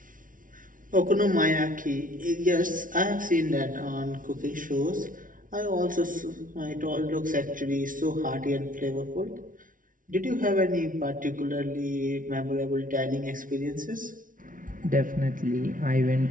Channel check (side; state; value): left; late; 0.39 ms